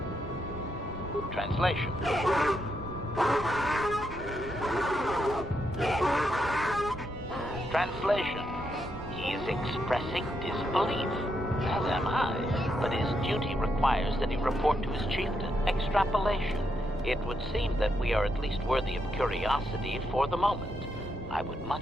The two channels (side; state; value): both; normal; correlation 0.80